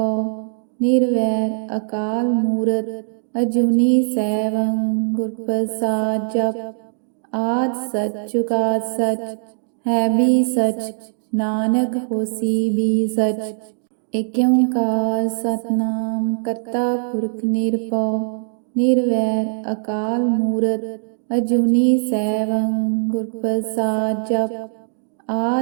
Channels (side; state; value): left; silent; digital silence